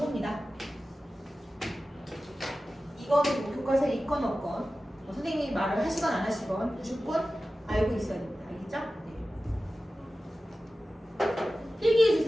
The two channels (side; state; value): both; normal; correlation 0.95